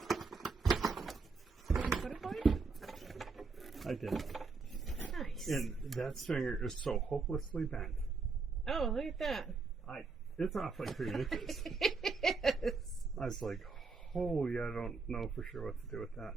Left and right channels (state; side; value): quieter; left; 4.3 dB